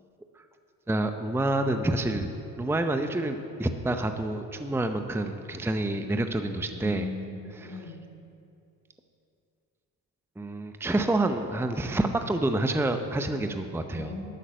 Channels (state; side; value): normal; both; correlation 0.75